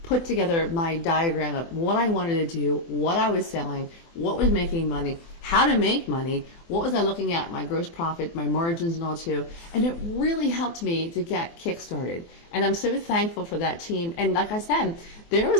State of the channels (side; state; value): right; late; 24 ms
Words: put together my diagram of what I wanted to do, what I was selling, what was making money, how to make money, what was I looking at, my gross profit, my margins and all too. And it really helped me to get kick-started. And I'm so thankful for that team. And like I said, there